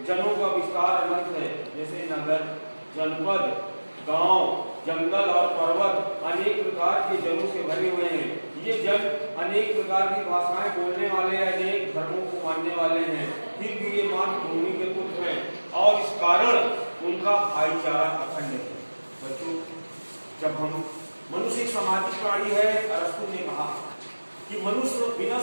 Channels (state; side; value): inverted; both; correlation -1.00